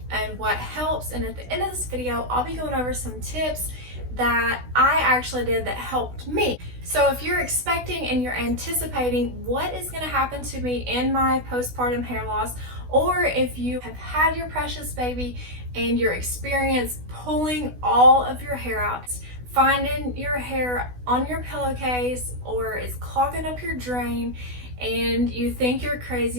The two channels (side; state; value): left; late; 16 ms